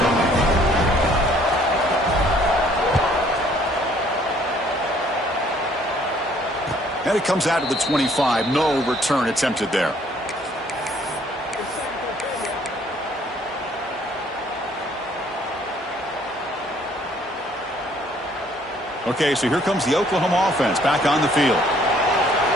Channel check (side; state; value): both; normal; correlation 0.61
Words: And it comes out to the 25. No return attempted there. Okay, so here comes the Oklahoma offense back on the field.